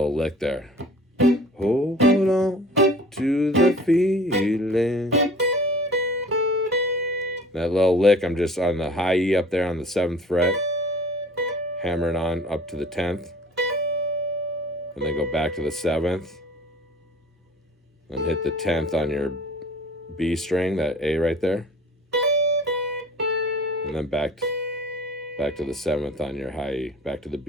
lick there. Hold on to the feeling. That little lick, I'm just on the high E up there on the 7th fret. Hammering on up to the 10th. And then go back to the 7th. And hit the 10th on your B string, that A right there. And then back to the 7th on your high E, back to the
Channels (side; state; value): both; normal; correlation 0.46